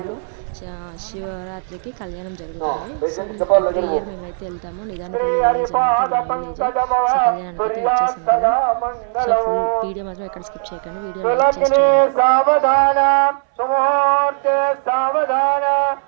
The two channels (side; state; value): left; silent; 60 dB below the other